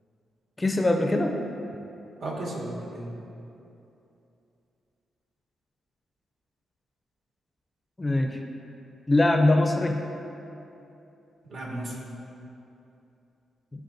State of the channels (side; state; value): both; normal; correlation 0.94